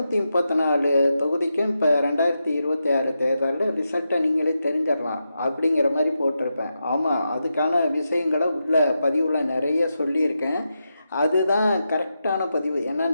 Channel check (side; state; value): both; inverted; correlation -0.87